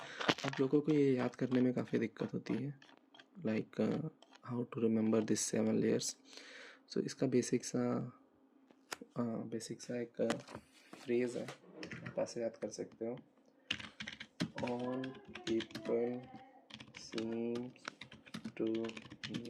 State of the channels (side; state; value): both; identical; correlation 1.00